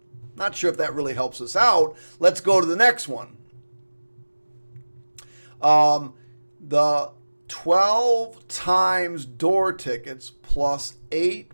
Not sure if that really helps us out. Let's go to the next one. The 12 times door tickets plus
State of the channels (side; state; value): both; inverted; correlation -1.00